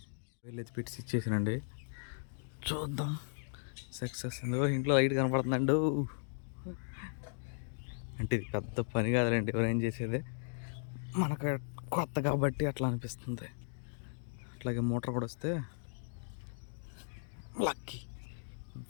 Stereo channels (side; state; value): right; silent; digital silence